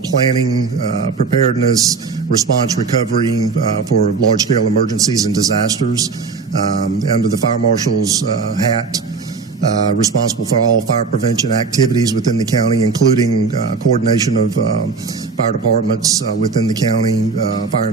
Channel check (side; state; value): left; quieter; 4.8 dB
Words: planning, preparedness, response, recovery for large-scale emergencies and disasters. Under the Fire Marshal's hat, responsible for all fire prevention activities within the county, including coordination of fire departments within the county, fire